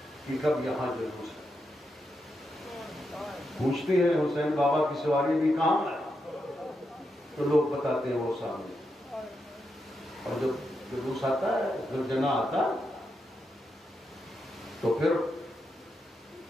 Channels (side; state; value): both; normal; correlation 0.85